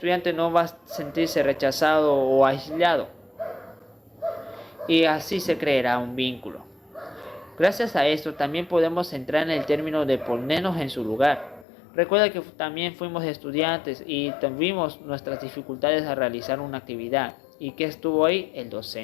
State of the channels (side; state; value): right; drops out; at 11.7 s